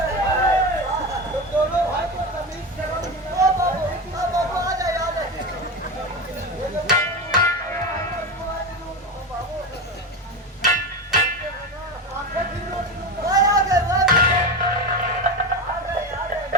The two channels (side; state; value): both; normal; correlation 0.20